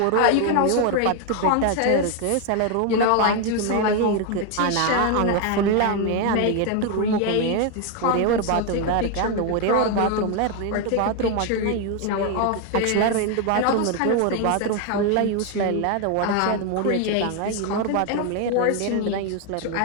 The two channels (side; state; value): both; different; correlation 0.01